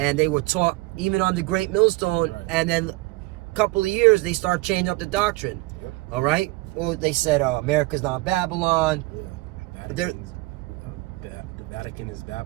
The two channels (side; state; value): left; quieter; 21.8 dB